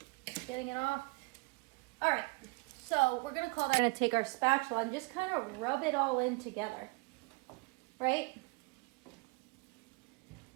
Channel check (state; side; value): quieter; left; 27.5 dB